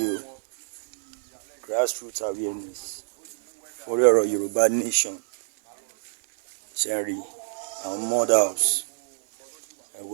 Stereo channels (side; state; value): left; silent; digital silence